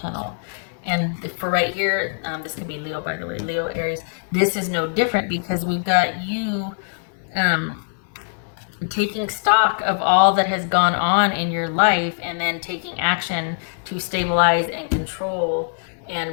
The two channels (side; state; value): right; silent; 64 dB below the other